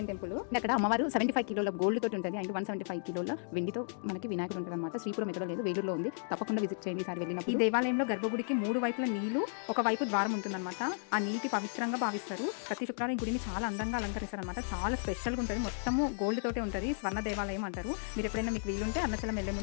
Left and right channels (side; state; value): right; silent; digital silence